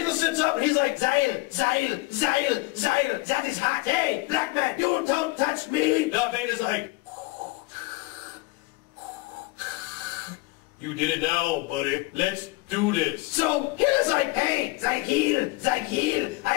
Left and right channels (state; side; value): quieter; right; 22.3 dB